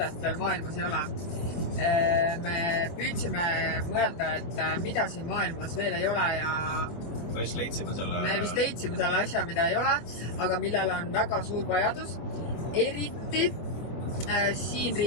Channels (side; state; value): right; late; 24 ms